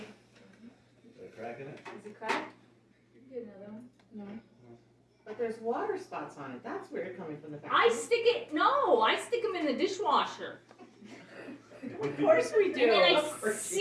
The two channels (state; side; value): identical; both; correlation 1.00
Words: They're cracking it? Is it cracked? Get another one. But there's water spots on it. That's weird coming from the back. I stick them in the dishwasher. Of course we do. And then Of I course we